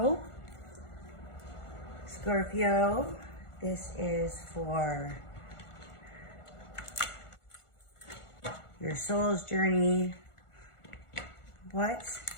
Scorpio, this is for your soul's journey. What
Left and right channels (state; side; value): late; right; 1.4 ms